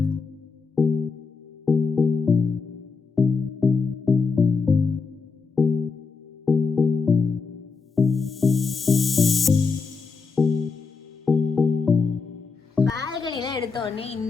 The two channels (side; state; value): right; quieter; 4.9 dB